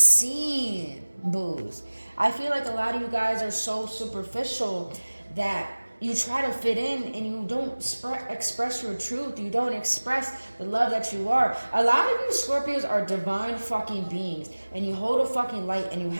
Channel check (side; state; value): both; inverted; correlation -1.00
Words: boos. I feel like a lot of you guys are so superficial that you try to fit in and you don't express your truth. You don't express the love that you are. A lot of you Scorpios are divine fucking beings and you hold a fucking light and you